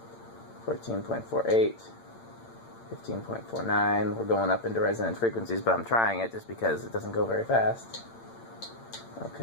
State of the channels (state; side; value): late; right; 8.8 ms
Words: 14.48, 15.49. We're going up into resonant frequencies, but I'm trying it just because it doesn't go very fast.